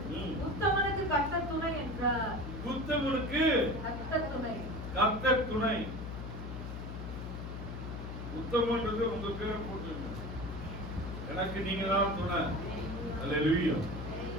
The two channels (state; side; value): noise; left; hum, 7 dB below the sound